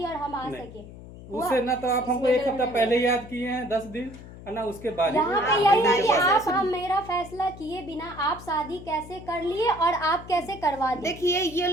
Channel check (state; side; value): noise; left; hum, 16 dB below the sound